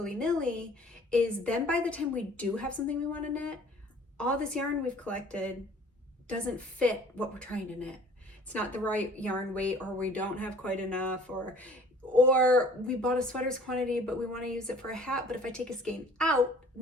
is then by the time we do have something we want to knit, all this yarn we've collected doesn't fit what we're trying to knit. It's not the right yarn weight, or we don't have quite enough, or we bought a sweater's quantity but we want to use it for a hat, but if I take a skein out,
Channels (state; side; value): normal; both; correlation 0.52